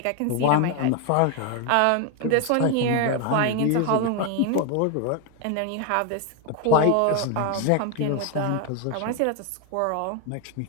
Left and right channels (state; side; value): different; both; correlation 0.01